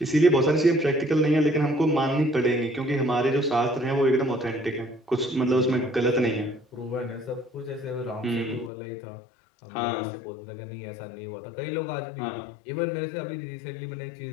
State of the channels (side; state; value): right; drops out; at 8.7 s